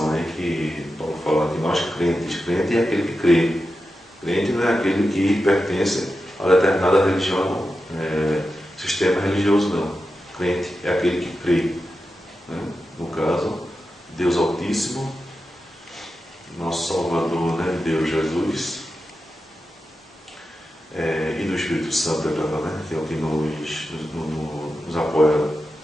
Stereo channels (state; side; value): normal; both; correlation 0.90